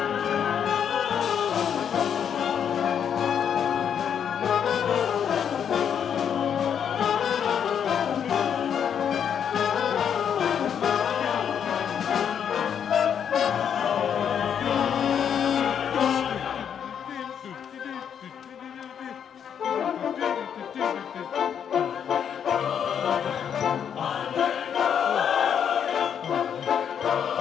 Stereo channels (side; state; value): right; quieter; 8.2 dB